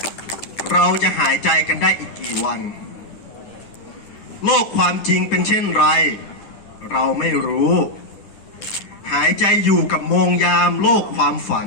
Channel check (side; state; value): right; late; 10 ms